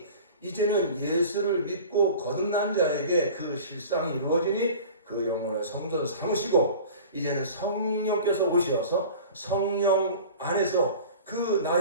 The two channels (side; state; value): both; inverted; correlation -0.40